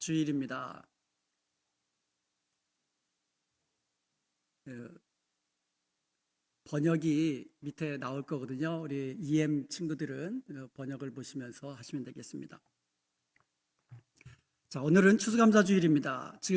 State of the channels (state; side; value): identical; both; correlation 1.00